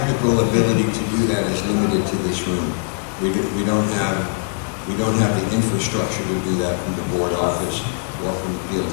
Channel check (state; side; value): silent; right; 57 dB below the other